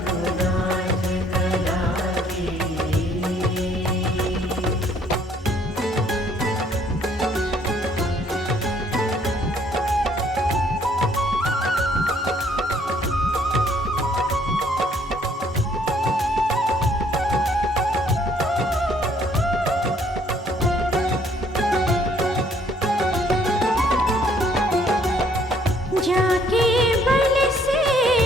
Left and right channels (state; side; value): normal; both; correlation 0.63